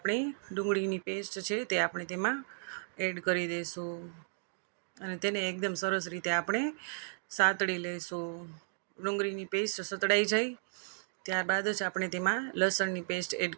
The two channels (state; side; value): silent; left; digital silence